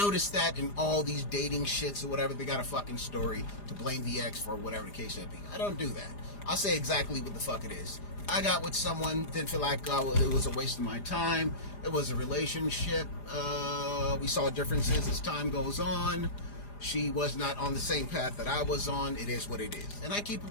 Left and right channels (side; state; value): right; late; 4.9 ms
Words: that in all these dating shits or whatever, they got a fucking story to blame the ex for, whatever the case may be. I don't do that. I'll say exactly what the fuck it is. I got with someone, didn't feel like it was a waste of my time. It was a relationship. We saw differences as time goes on. She was not on the same path that I was on. It is what it is. And I keep